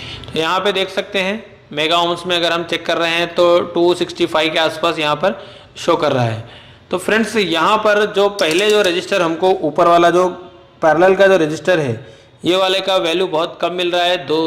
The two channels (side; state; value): both; identical; correlation 1.00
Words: तो यहाँ पे देख सकते हैं मेगा ओम्स में अगर हम चेक कर रहे हैं तो 265 के आसपास यहाँ पर शो कर रहा है। तो फ्रेंड्स, यहाँ पर जो पहले जो रजिस्टर हमको ऊपर वाला जो पैरेलल का जो रजिस्टर है, ये वाले का वैल्यू बहुत कम मिल रहा है,